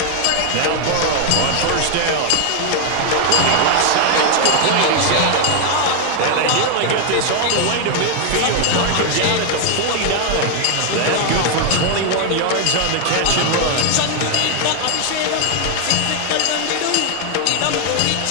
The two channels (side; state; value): both; different; correlation 0.00